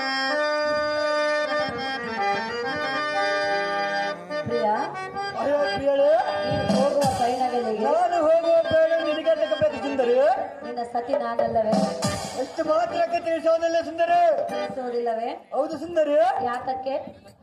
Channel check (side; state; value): both; identical; correlation 1.00